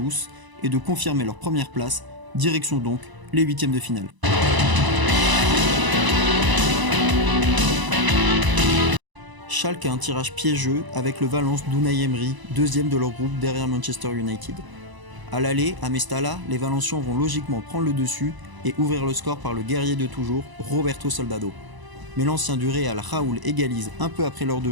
et de confirmer leur première place, direction donc les huitièmes de finale. Schalke a un tirage piégeux avec le Valence d'Unai Emery, deuxième de leur groupe derrière Manchester United. À l'aller, à Mestalla, les Valencians vont logiquement prendre le dessus et ouvrir le score par le guerrier de toujours, Roberto Soldado. Mais l'ancien du Real, Raúl, égalise un peu après l'heure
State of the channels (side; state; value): left; late; 1.0 ms